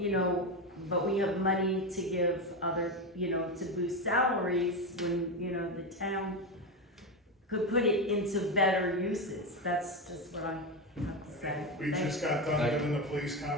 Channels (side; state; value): both; normal; correlation 0.14